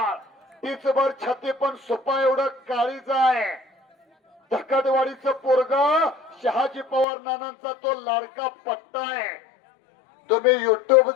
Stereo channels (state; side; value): drops out; right; at 7.1 s